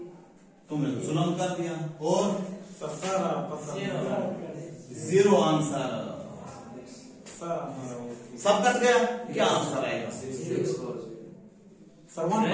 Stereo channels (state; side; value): identical; both; correlation 1.00